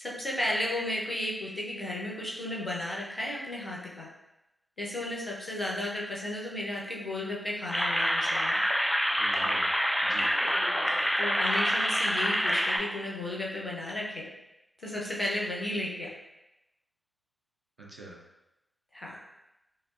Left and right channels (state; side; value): normal; both; correlation 0.90